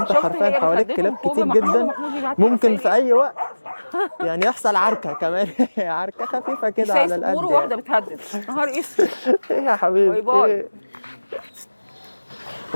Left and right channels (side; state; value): both; inverted; correlation -1.00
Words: حرفيا حواليك كلاب كتير جدا، ممكن في اي وقت يعني يحصل عركه كمان. عركه خفيفه كده على القد. مش واحده بتهدد نهار اسود. ايه يا حبيبي؟ باي.